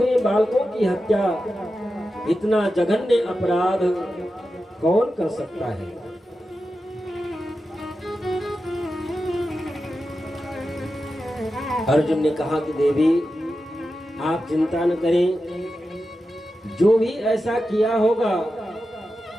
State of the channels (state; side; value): normal; both; correlation 0.91